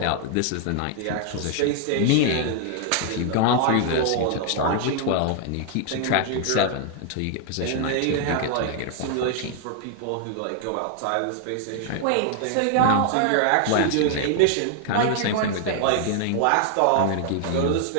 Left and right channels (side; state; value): both; different; correlation 0.00